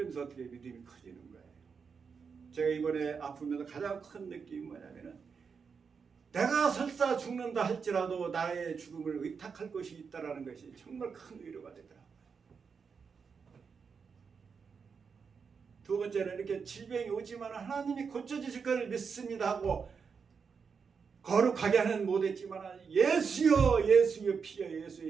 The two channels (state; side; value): quieter; left; 5.8 dB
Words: 어떻게 믿음이 커지는 거예요. 제가 이번에 아프면서 가장 큰 느낌이 뭐냐면은 내가 설사 죽는다 할지라도 나의 죽음을 의탁할 것이 있다라는 것이 정말 큰 위로가 되더라고요. 두 번째는 이렇게 질병이 오지만 하나님이 고쳐주실 것을 믿습니다 하고 거룩하게 하는 못했지만 예수여 예수여 피여